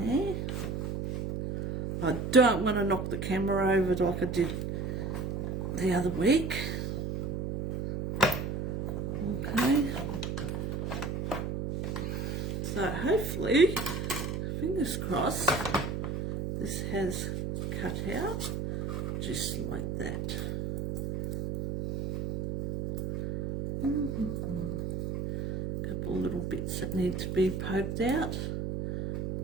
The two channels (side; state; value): right; noise; hum, 3 dB below the sound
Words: there. I don't want to knock the camera over like I did the other week. Okay. So hopefully, fingers crossed, this has cut out just like that. Couple little bits that need to be poked out.